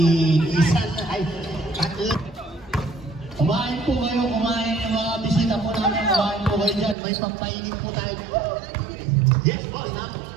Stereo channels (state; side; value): drops out; left; at 7.0 s